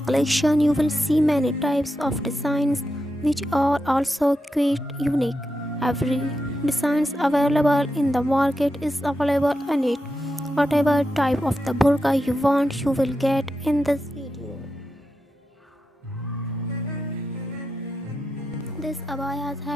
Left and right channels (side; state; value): both; normal; correlation 0.87